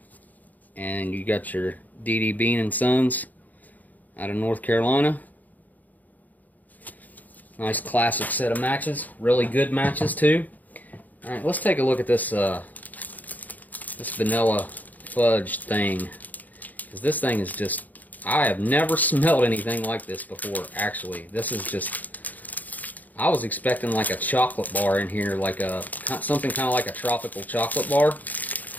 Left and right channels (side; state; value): right; late; 0.081 ms